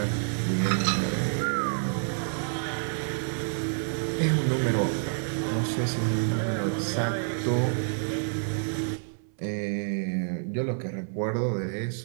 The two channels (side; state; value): left; silent; 59 dB below the other